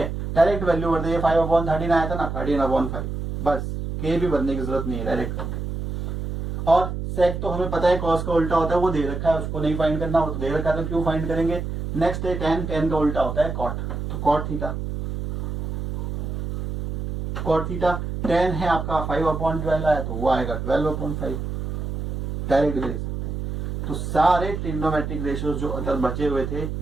डायरेक्ट वैल्यू कर दिए, 5/13 आया था ना, 13/5, बस के भी भरने की जरूरत नहीं है, डायरेक्ट कर दे। और सेक तो हमें पता है कॉस का उल्टा होता है, वो दे रखा है, उसको नहीं फाइंड करना, वो तो दे रखा है तो क्यों फाइंड करेंगे। नेक्स्ट है टेन, टेन का उल्टा होता है कॉट, तो cot theta, cot theta. Tan है आपका 5/12 आया तो वो आएगा 12/5, डायरेक्ट दे सकते हैं। तो सारे ट्रिग्नोमेट्रिक रेशियोज जो अदर बचे हुए थे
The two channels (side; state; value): right; noise; hum, 4 dB below the sound